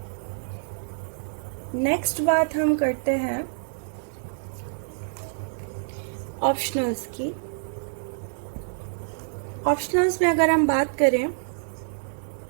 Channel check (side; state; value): left; silent; digital silence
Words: Next बात हम करते हैं ऑप्शनल्स की। ऑप्शनल्स में अगर हम बात करें